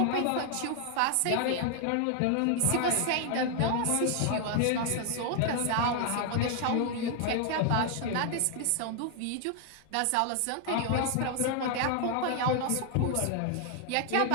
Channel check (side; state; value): both; different; correlation 0.00